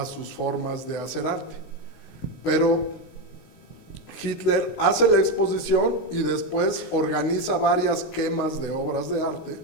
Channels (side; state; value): right; late; 19 ms